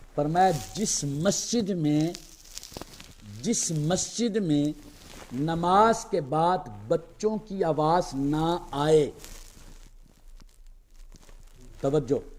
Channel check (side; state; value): both; identical; correlation 1.00